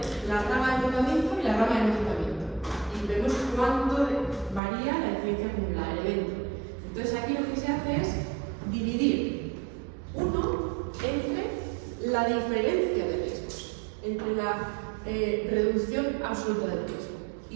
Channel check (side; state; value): left; drops out; at 4.6 s